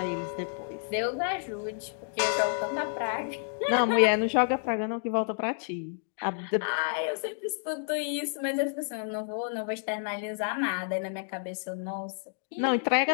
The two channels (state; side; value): silent; right; digital silence